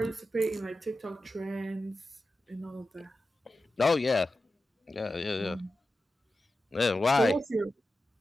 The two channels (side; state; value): both; normal; correlation 0.92